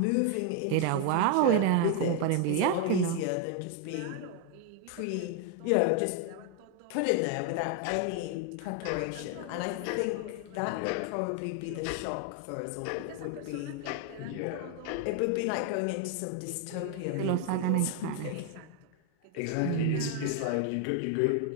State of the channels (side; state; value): both; different; correlation 0.01